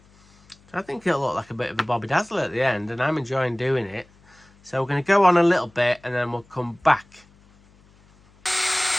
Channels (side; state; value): left; noise; hum, 30 dB below the sound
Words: So I think it'll look like a bit of a Bobby Dazzler at the end, and I'm enjoying doing it. So we're going to go on a little bit and then we'll come back.